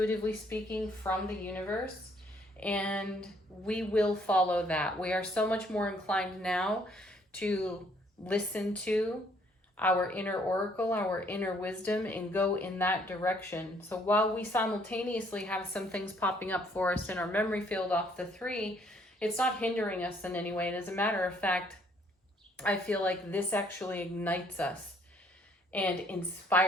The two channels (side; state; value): both; normal; correlation 0.65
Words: speaking, from the universe, and we will follow that. We are so much more inclined now to listen to our inner oracle, our inner wisdom, and go in that direction. So while we simultaneously have some things popping up for us in our memory field off the 3, it's not hindering us in any way. And as a matter of fact, I feel like this actually ignites us and